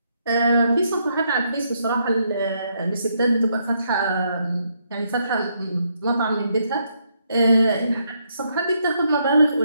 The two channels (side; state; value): both; inverted; correlation -0.75